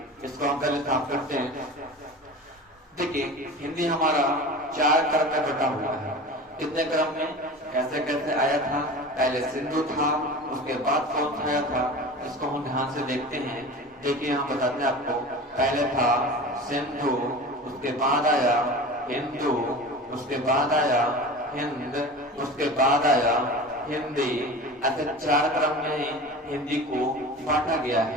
इसको हम पहले साफ करते हैं। देखिए हिंदी हमारा 4 क्रम में बटा हुआ है। कितने क्रम में, कैसे कैसे आया था? पहले सिंधु था, उसके बाद कौन सा आया था, इसको हम ध्यान से देखते हैं। देखिए यहाँ बताते हैं आपको, पहले था सिंधु, उसके बाद आया हिंदू, उसके बाद आया हिंद, उसके बाद आया हिंदी। ऐसे 4 क्रम में हिंदी को बांटा गया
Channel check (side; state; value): both; normal; correlation 0.34